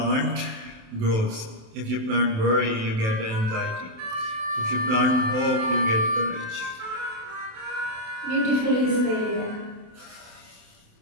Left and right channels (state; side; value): late; left; 27 ms